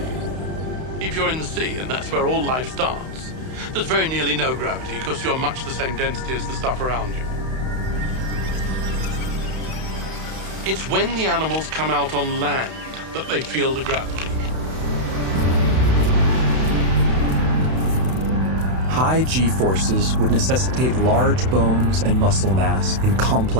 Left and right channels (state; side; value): late; left; 31 ms